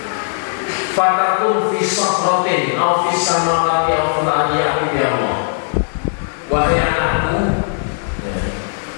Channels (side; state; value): right; silent; 68 dB below the other